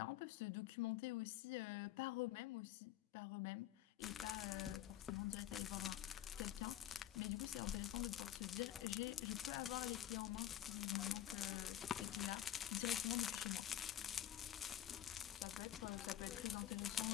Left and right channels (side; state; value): right; quieter; 11.6 dB